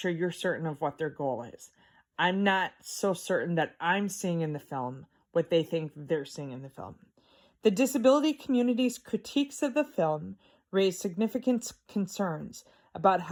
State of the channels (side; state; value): both; identical; correlation 1.00